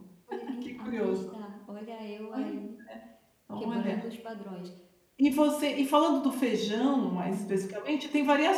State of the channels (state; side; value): identical; both; correlation 1.00